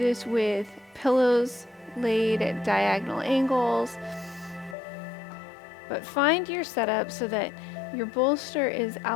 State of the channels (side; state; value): right; drops out; at 4.8 s